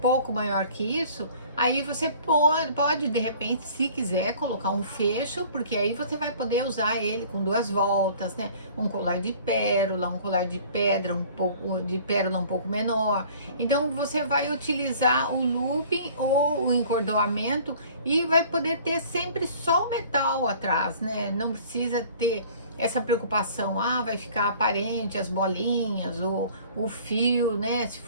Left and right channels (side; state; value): both; inverted; correlation -0.50